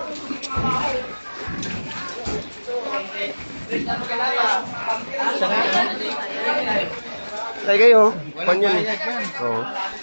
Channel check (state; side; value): inverted; both; correlation -1.00